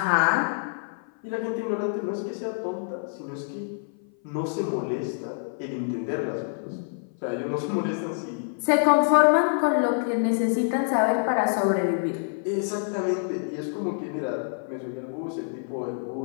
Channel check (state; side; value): silent; right; 57 dB below the other